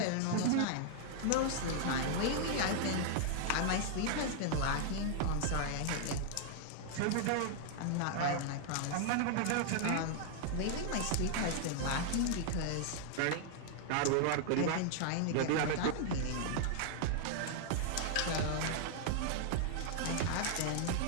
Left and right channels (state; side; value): different; both; correlation -0.01